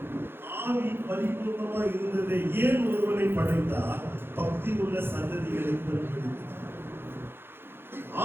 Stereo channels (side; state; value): left; late; 0.11 ms